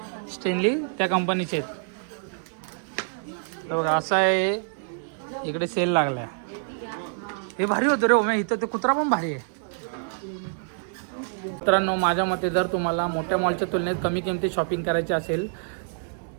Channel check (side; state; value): left; silent; 61 dB below the other